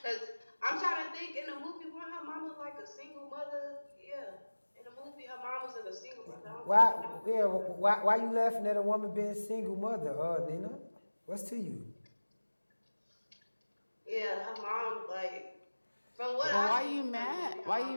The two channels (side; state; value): both; inverted; correlation -1.00